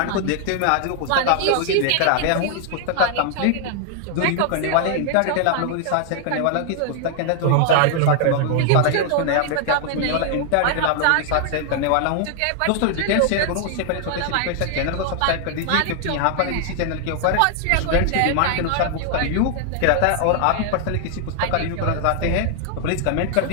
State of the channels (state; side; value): different; both; correlation 0.00